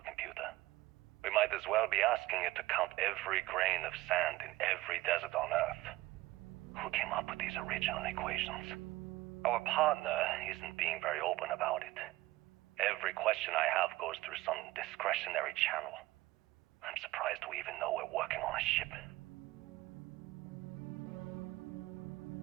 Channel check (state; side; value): quieter; left; 18.2 dB